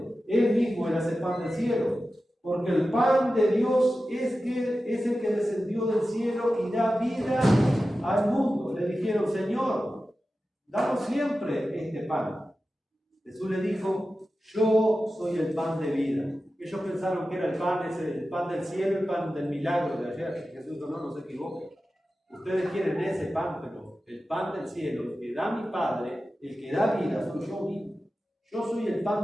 Él mismo era ese pan del cielo. Porque el pan de Dios es el que descendió del cielo y da vida al mundo. Le dijeron: Señor, danos siempre este pan. Jesús le dijo: yo soy el pan de vida. Ellos pensaron que era el pan del cielo, el pan del milagro de ayer. Jesús dijo: no se equivoquen. Ustedes quieren ese pan, pero el pan del cielo, el que da mi Padre, el que da vida, soy yo mismo. Yo soy el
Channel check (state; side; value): normal; both; correlation 0.93